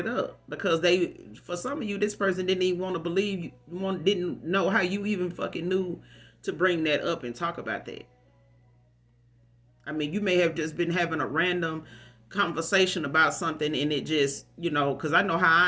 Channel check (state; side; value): identical; both; correlation 1.00